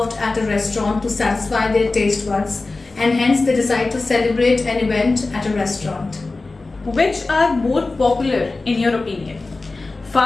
at a restaurant to satisfy their taste buds, and hence they decide to celebrate an event at a restaurant. Which are more popular in your opinion?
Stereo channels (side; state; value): right; quieter; 3.5 dB